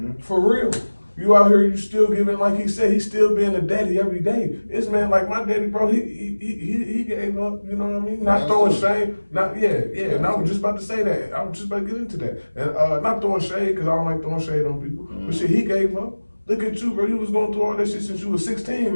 For real. You out here, you still giving, like he said, he's still being a daddy every day. This man, like my daddy, bro, he gave up, you know what I mean? Not throwing shade, and I was just about to say that. I was just about to get into that. And not throwing shade, because I don't like throwing shade on people. But shit, he gave up. Look at you, bro. You was going through all that shit since you was 16,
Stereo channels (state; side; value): inverted; both; correlation -1.00